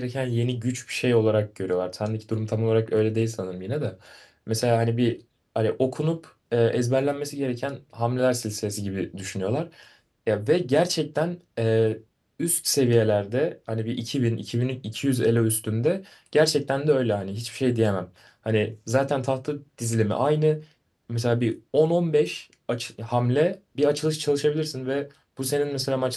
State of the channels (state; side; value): identical; both; correlation 1.00